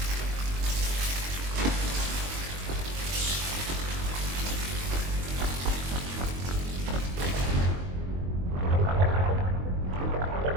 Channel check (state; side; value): late; left; 22 ms